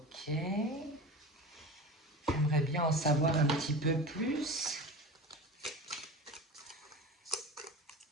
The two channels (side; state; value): both; normal; correlation 0.32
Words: J'aimerais bien en savoir un petit peu plus.